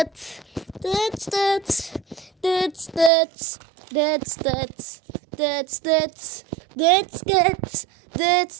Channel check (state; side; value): drops out; left; at 3.1 s